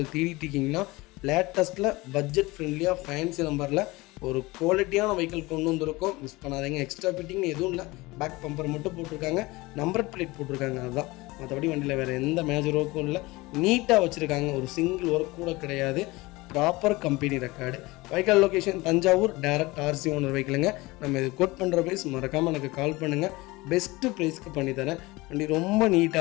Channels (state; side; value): quieter; right; 21.8 dB